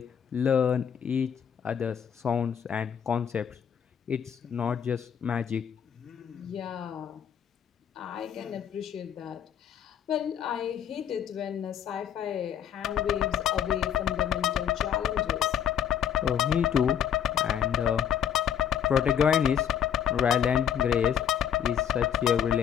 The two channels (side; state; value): right; quieter; 8.9 dB